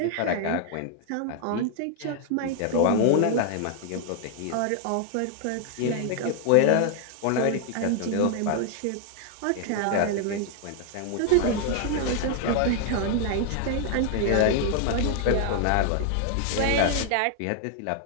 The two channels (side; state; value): both; different; correlation 0.00